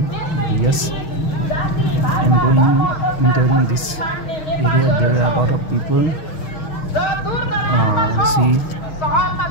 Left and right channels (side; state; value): right; late; 6.4 ms